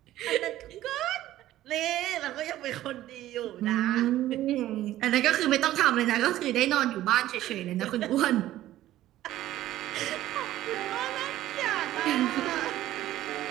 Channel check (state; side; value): quieter; left; 14.2 dB